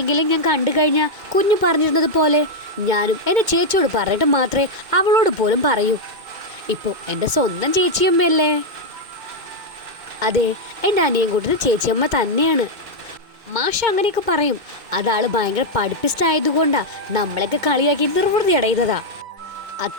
ഞാൻ കണ്ടു കഴിഞ്ഞാൽ കുഞ്ഞു പറഞ്ഞിരുന്നത് പോലെ ഞാനും എൻ്റെ ചേച്ചിയോട് പറഞ്ഞിട്ട് മാത്രമേ അവളോട് പോലും പറയൂ. ഇപ്പോൾ എൻ്റെ സ്വന്തം ചേച്ചിയമ്മയല്ലേ? അതെ, എൻ്റെ അനിയൻകുട്ടന് ചേച്ചിയമ്മ തന്നെയാണ്. മാഷ് അങ്ങനെയൊക്കെ പറയും. അതാൾ ഭയങ്കര പഠിപ്പിസ്റ്റ് ആയതുകൊണ്ടാണ് നമ്മളെയൊക്കെ കളിയാക്കി നിർവൃതി അടയുന്നതാ.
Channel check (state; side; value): late; left; 2.2 ms